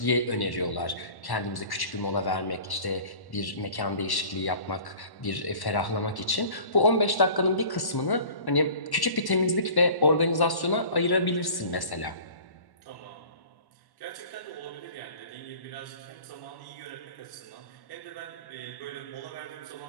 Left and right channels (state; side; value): late; right; 1.1 ms